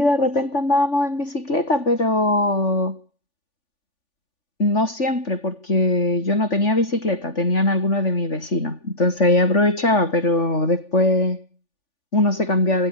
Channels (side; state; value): right; late; 3.5 ms